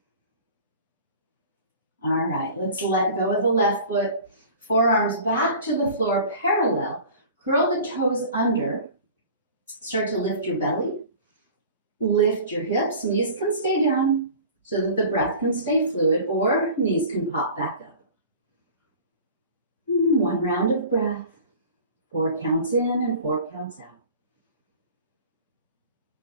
All right, let's let go of the left foot. Forearms back to the floor parallel. Curl the toes under. Start to lift your belly. Lift your hips. Knees can stay down so that the breath can stay fluid, or knees can pop back up. One round of breath. 4 counts in and 4 counts out.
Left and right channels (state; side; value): inverted; both; correlation -0.41